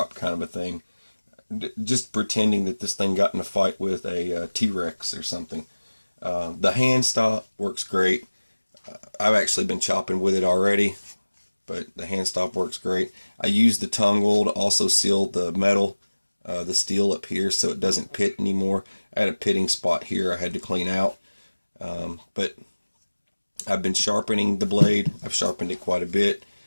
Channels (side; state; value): both; inverted; correlation -1.00